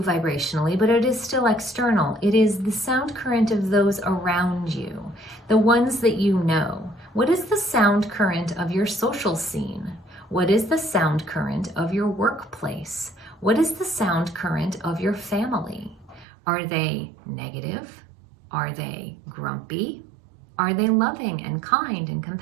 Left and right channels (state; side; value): drops out; left; at 16.2 s